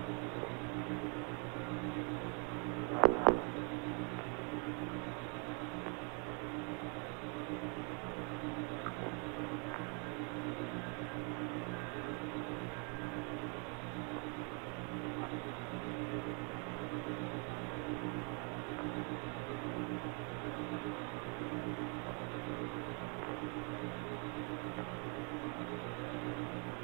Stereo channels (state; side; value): quieter; left; 37.2 dB